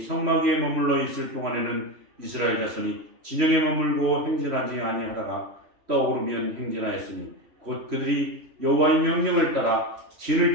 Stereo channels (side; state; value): left; late; 3.1 ms